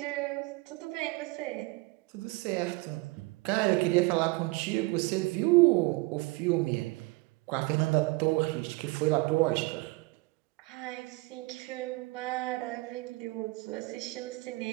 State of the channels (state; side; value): quieter; left; 24.0 dB